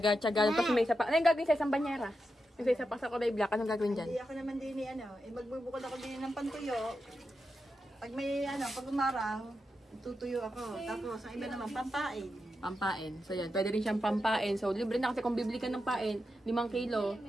Tapos may isa pa. Ano yung gagawin sa isang banyera? Yung sa isa pa sa kulay black, anong gagawin dyan? Hindi ako naman din magbubukod ako din ng pantuyo. Pag may pag umaraw, tutuyo ako. Tapos ang iba naman pampain. Pampain. So yan, pwede rin siyang pampain. So libre na kasi kung bibili ka ng pain, 5 kilo,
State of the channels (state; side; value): normal; both; correlation 0.88